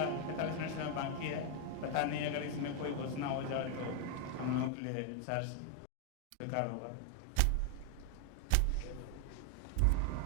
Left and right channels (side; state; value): both; different; correlation 0.00